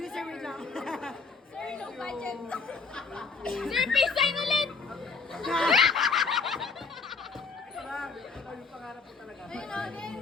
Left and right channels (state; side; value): quieter; right; 4.7 dB